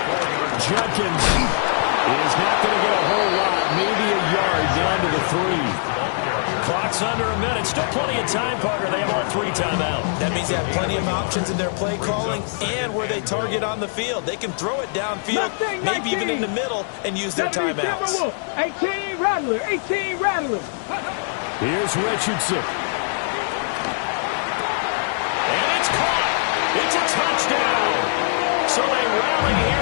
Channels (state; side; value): silent; right; digital silence